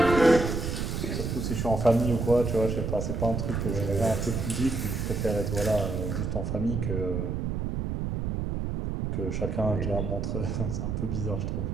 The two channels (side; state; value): right; noise; rumble, 2 dB below the sound